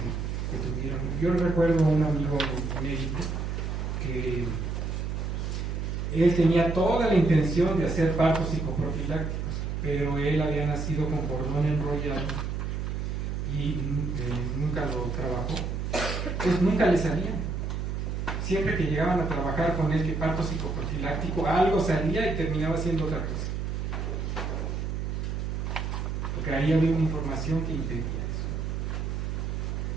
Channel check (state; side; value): noise; right; hum, 2 dB below the sound